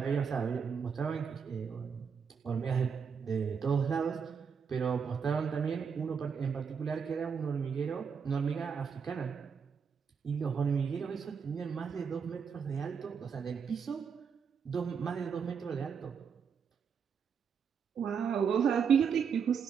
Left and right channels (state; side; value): quieter; left; 6.5 dB